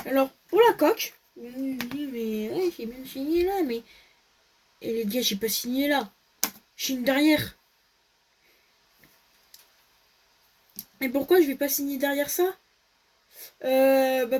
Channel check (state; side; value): identical; both; correlation 1.00